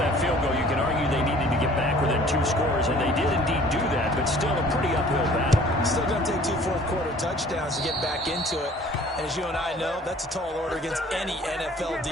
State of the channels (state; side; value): normal; both; correlation 0.52